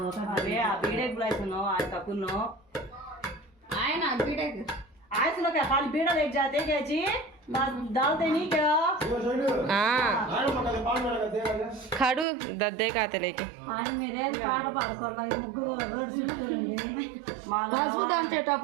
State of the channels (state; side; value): drops out; left; at 12.2 s